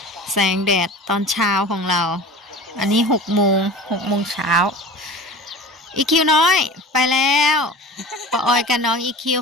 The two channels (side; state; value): both; normal; correlation 0.37